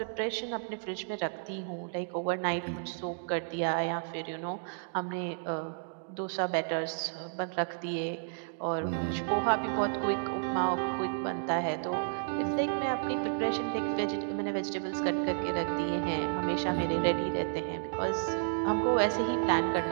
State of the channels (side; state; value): left; silent; digital silence